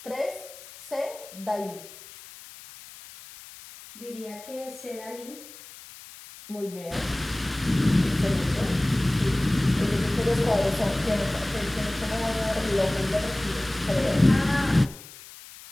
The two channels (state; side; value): noise; left; hiss, 17 dB below the sound